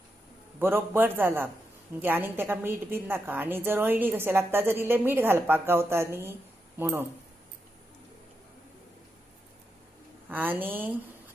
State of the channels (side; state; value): both; normal; correlation 0.85